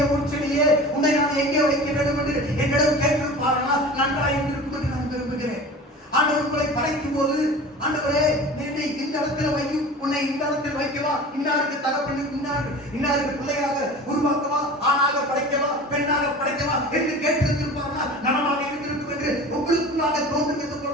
உன்னை நான் எங்கே வைக்க வேண்டும் என்று என்னிடம் கேட்டிருப்பார்களா? நன்றாக இருக்கும் என்று நான் விரும்புகிறேன். ஆண்டவர் உங்களை படைக்கும் போது ஆண்டவரே என்னை இந்த இடத்துல வையும், உன்னை இந்த இடத்தில் வைக்கவா, இன்னாருக்கு தகப்பன் இன்னாருக்கு பிள்ளையாக உருவாக்கவா, ஆணாக படைக்கவா பெண்ணாக படைக்கவா என்று கேட்டிருந்திருப்பார்களா? நலமாக இருந்திருக்கும் என்று உங்களுக்குள்ளாக தோன்றுகிறது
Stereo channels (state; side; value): normal; both; correlation 0.37